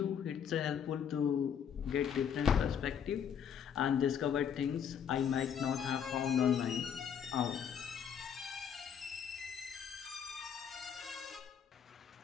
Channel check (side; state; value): right; quieter; 8.0 dB